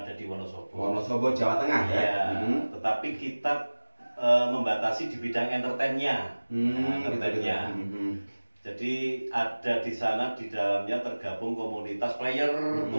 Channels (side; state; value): both; inverted; correlation -1.00